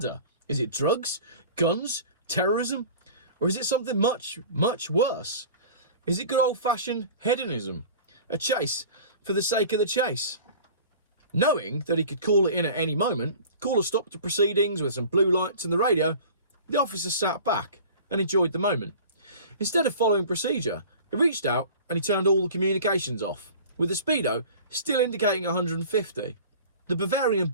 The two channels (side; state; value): both; inverted; correlation -0.42